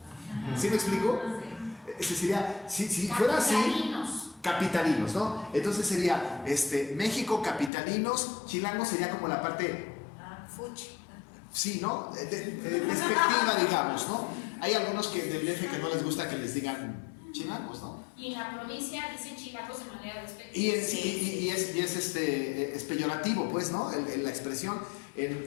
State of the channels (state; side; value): drops out; right; at 7.7 s